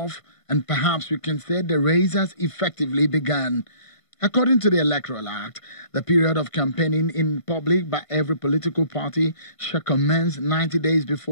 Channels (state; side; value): late; right; 1.5 ms